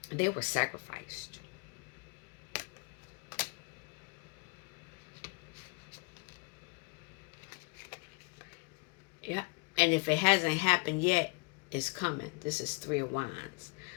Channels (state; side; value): quieter; right; 32.3 dB